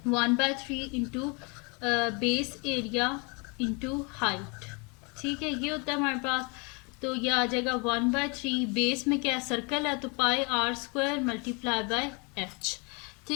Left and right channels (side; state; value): right; quieter; 31.8 dB